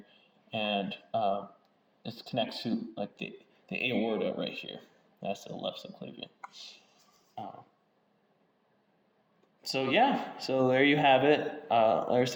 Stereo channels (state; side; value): identical; both; correlation 1.00